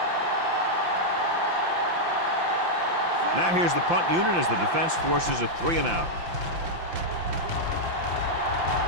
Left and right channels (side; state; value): left; late; 5.8 ms